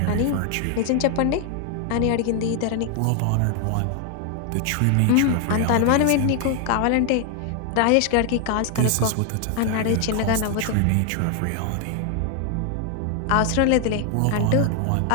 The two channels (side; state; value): both; different; correlation 0.00